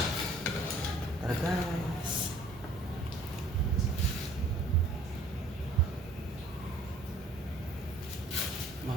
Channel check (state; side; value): normal; both; correlation 0.55